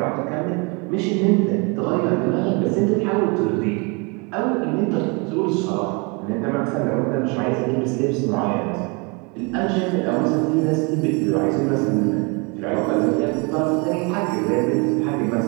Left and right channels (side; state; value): left; quieter; 30.6 dB